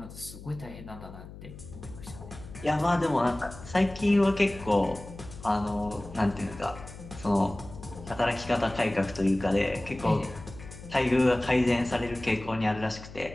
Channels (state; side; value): noise; left; hum, 15 dB below the sound